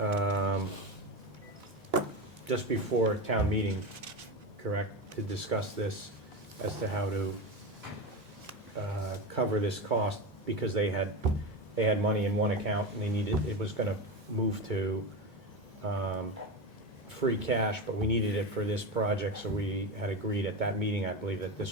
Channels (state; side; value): normal; both; correlation 0.20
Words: just before town meeting, correct, to discuss this as to how to cover this cost, because they had money in one account and they needed, it was gonna move to free cash, but we needed it for this project, so we had agreed at that meeting, I believe, that